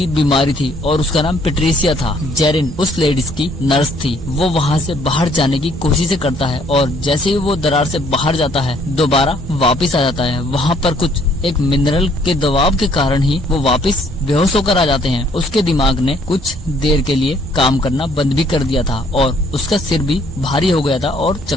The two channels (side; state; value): both; normal; correlation 0.64